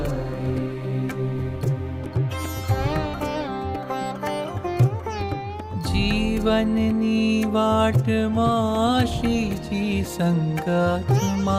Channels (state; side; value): identical; both; correlation 1.00